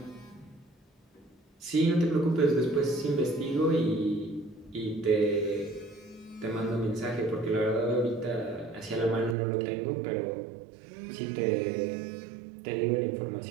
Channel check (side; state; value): left; drops out; at 9.3 s